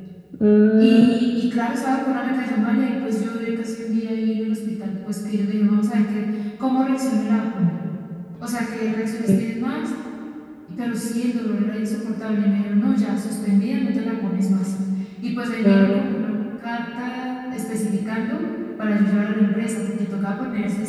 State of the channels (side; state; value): both; identical; correlation 1.00